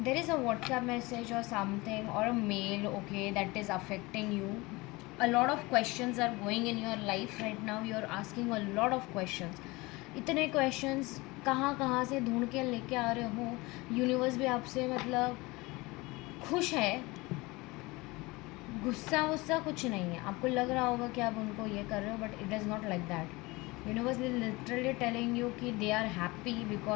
there is a WhatsApp message or something or a mail, okay, that is affecting you. A lot of questions are going in your life right now. You are asking a lot of questions. इतने questions कहाँ कहाँ से ढूंढ के लेके आ रहे हो. यूनिवर्स भी आपसे मतलब खुश है, गुस्सा वुस्सा कुछ नहीं है. आपको लग रहा होगा कि आप उनको ये कर रहे हो, but it is not like that. Universe is literally telling you कि they are happy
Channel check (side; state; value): right; quieter; 22.9 dB